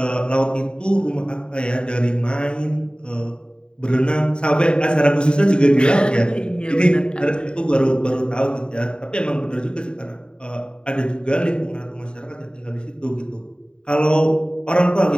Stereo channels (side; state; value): right; late; 0.050 ms